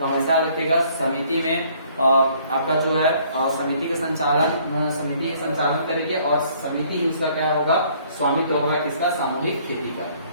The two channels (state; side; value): inverted; both; correlation -0.61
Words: हमेशा रखिएगा समिति में आपका जो है समिति के समिति संचालन करेगी और समिति ही उसका क्या होगा स्वामित्व होगा किसका, सामूहिक खेती का।